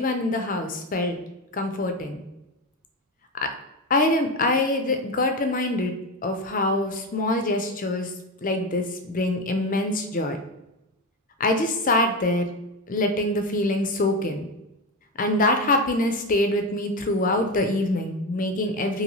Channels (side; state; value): both; normal; correlation 0.17